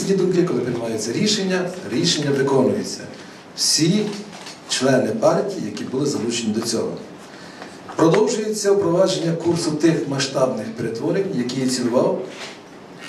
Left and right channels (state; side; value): identical; both; correlation 1.00